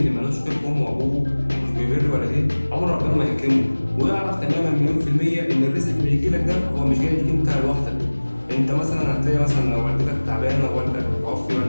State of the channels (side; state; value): both; inverted; correlation -1.00